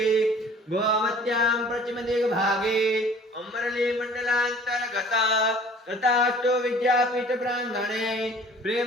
गोमत्यां पश्चिमदिग्भागे अमरली मंडलांतर्गत तथास्तु विद्यापीठ प्रांगणे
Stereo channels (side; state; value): both; normal; correlation 0.50